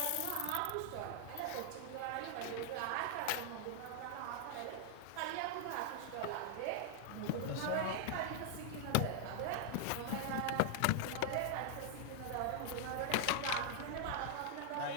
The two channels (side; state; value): both; different; correlation 0.00